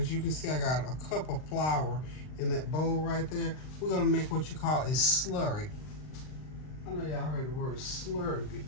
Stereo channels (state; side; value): late; right; 39 ms